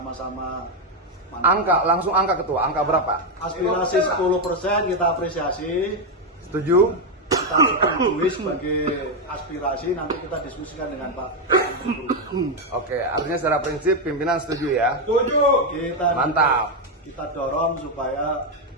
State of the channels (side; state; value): both; normal; correlation 0.04